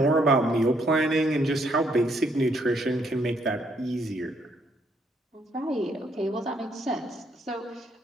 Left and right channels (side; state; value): both; normal; correlation 0.71